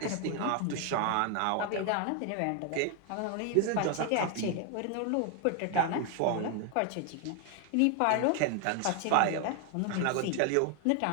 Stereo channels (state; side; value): different; both; correlation 0.01